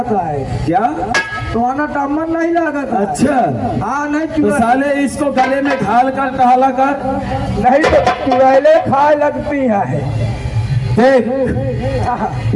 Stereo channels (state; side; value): identical; both; correlation 1.00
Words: है। क्या रोना टम्मन नहीं लागता? अच्छा हाँ नहीं तो साले इसको गले में घाल कर टहला कर। नहीं तो चुड़ैले खाए लगती है। देख